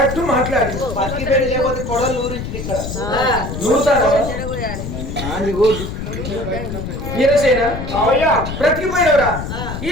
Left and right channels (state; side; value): noise; left; rumble, 6 dB below the sound